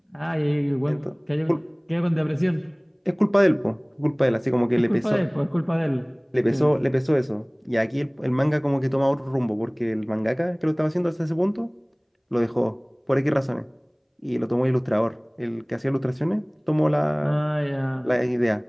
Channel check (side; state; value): both; identical; correlation 1.00